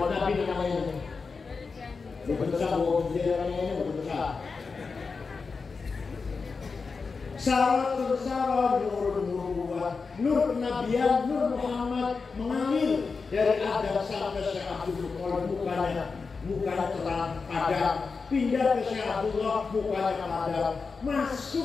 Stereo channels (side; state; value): right; quieter; 4.7 dB